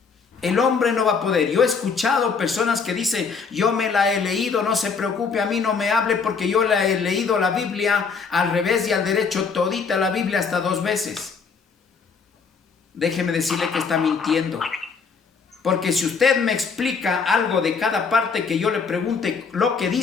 El hombre no va a poder. Yo he escuchado personas que dicen, yo me la he leído, no se preocupe, a mí no me hable porque yo la he leído la Biblia al revés y al derecho, todita la Biblia hasta 2 veces. Déjeme decirle que está mintiendo. Porque si usted me explica algo de cada parte que yo le pregunte lo que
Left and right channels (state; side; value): quieter; right; 5.4 dB